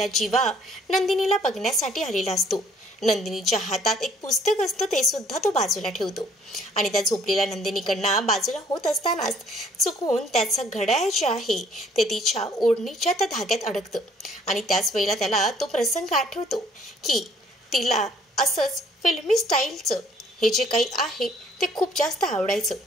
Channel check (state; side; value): normal; both; correlation 0.61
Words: जीवा नंदिनीला बघण्यासाठी आलेला असतो. नंदिनीच्या हातात एक पुस्तक असतं, ते सुद्धा तो बाजूला ठेवतो आणि त्या झोपलेल्या नंदिनीकडनं बाजूला होत असतानाच चुकून त्याचं घड्याळ जे आहे ते तिच्या ओढणीच्या त्या धाग्यात अडकतं आणि त्याच वेळेला त्याला तो प्रसंग आठवतो की तिला असंच फिल्मी स्टाईलचं हे जे काही आहे ते खूप जास्त आवडायचं